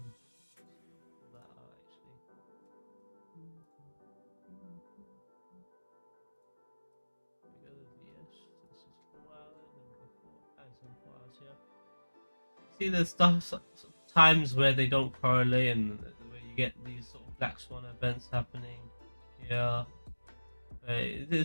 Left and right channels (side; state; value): both; inverted; correlation -1.00